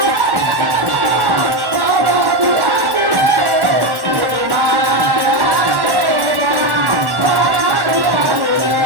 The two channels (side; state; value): left; late; 1.1 ms